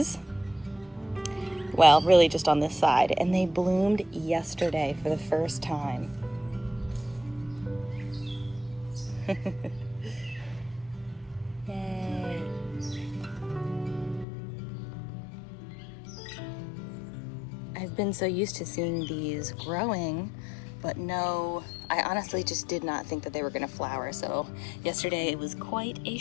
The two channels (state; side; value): drops out; right; at 14.2 s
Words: Well, really just on this side. And they bloomed yesterday for the first time. Yay. I've been so used to seeing these growing, but no, I honestly just did not think that they were gonna flower. So yesterday it was quite a